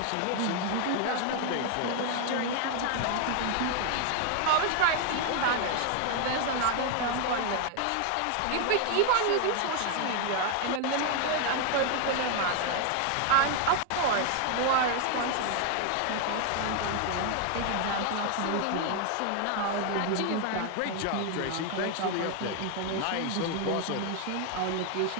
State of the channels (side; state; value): both; different; correlation 0.00